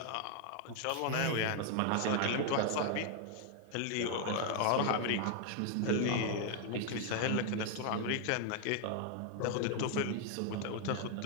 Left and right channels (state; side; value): different; both; correlation 0.00